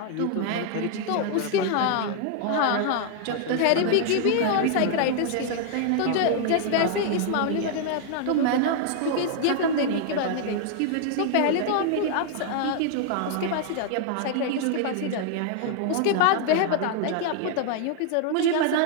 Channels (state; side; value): different; both; correlation 0.00